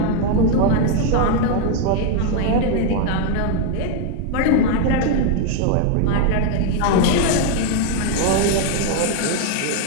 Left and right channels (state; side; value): different; both; correlation 0.01